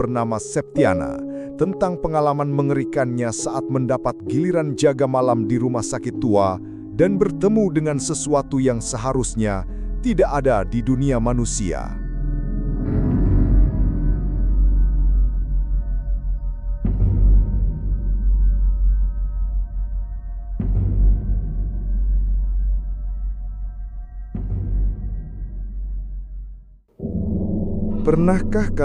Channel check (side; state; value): both; identical; correlation 1.00